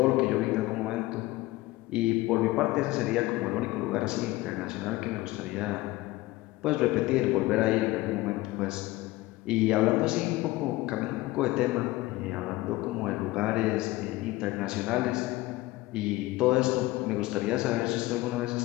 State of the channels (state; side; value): quieter; right; 18.9 dB